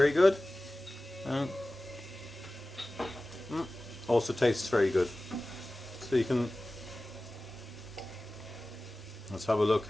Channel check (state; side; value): normal; both; correlation 0.97